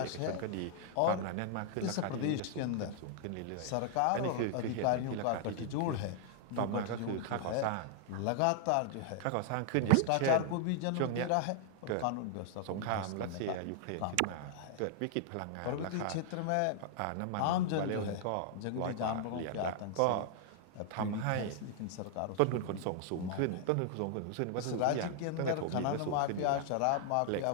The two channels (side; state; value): both; different; correlation 0.00